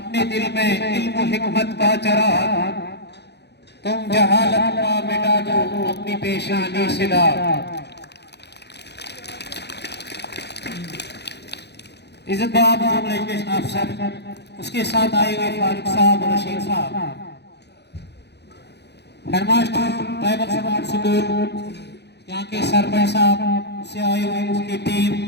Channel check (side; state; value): right; late; 0.49 ms